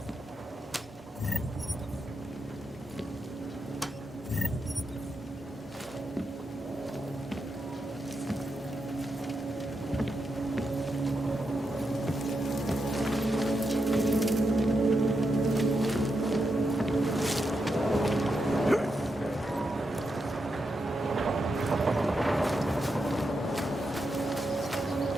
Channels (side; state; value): both; normal; correlation 0.85